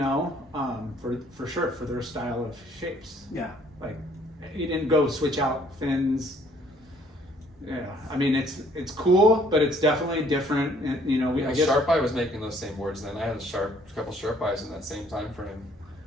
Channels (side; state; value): both; normal; correlation 0.62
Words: for sure for their style of shapes. yeah. Like, you didn't go switch out fins. Yeah, I mean it's cool, but it's definitely different. And, I guess. Sharp Eye was making those same boards then. I had a couple Sharp Eyes in that same time frame.